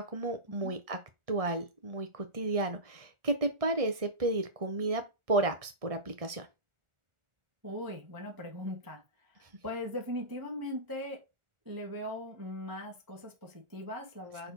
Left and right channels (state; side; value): late; left; 1.6 ms